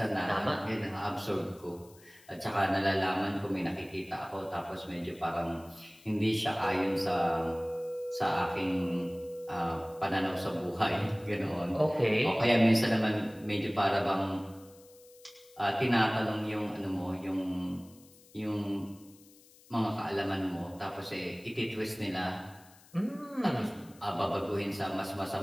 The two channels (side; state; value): left; noise; hiss, 25 dB below the sound